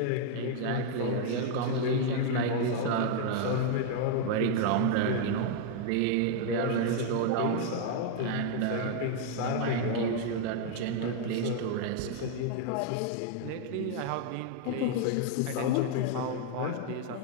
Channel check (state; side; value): different; both; correlation 0.00